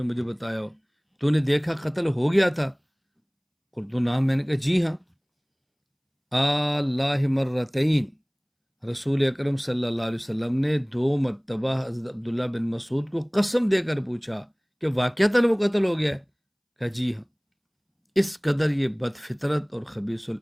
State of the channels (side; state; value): both; identical; correlation 1.00